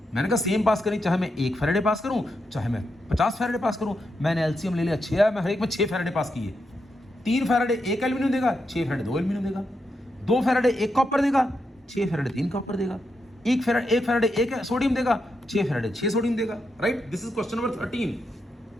मैंने कहा सेम पास करी, चाहे मैं 1 फैराडे पास करूं, चाहे मैं 50 फैराडे पास करूं। मैंने एलसीएम ले लिया 6 है, मैं हर एक में 6 फैराडे पास किए। 3 फैराडे 1 एल्यूमिनियम देगा, 6 फैराडे 2 एल्यूमिनियम देगा। 2 फैराडे 1 कॉपर देगा, 6 फैराडे 3 कॉपर देगा। 1 फैराडे 1 सोडियम देगा, 6 फैराडे 6 सोडियम देगा। Right, this is question number 13।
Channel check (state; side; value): normal; both; correlation 0.84